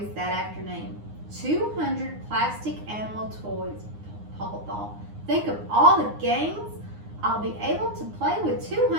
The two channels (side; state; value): left; late; 9.7 ms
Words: that afternoon. 200 plastic animal toys, Paul thought. Think of all the games I'll be able to play with